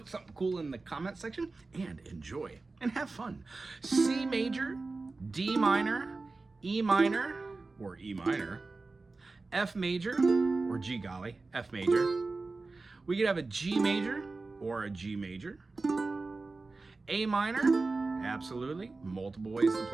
something cool in the comment section, and enjoy and have fun. C major, D minor, E minor, or E minor, F major, or G golly, F major. We could have a G major or a G major. A minor, absolutely, multiple ways to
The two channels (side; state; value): left; quieter; 3.6 dB